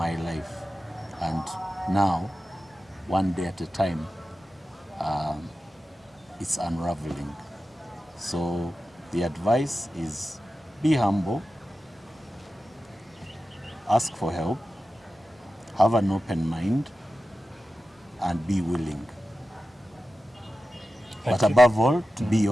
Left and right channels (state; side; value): normal; both; correlation 0.93